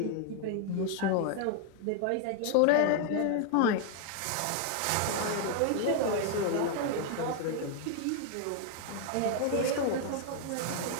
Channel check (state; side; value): different; both; correlation 0.00